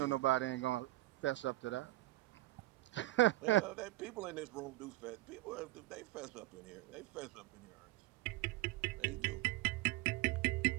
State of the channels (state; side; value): quieter; left; 17.9 dB